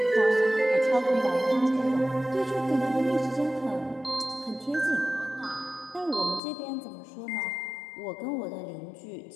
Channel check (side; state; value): right; drops out; at 6.4 s